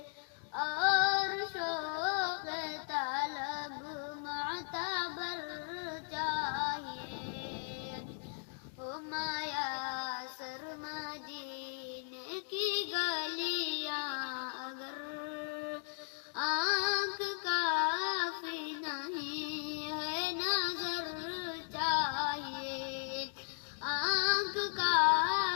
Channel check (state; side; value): silent; right; digital silence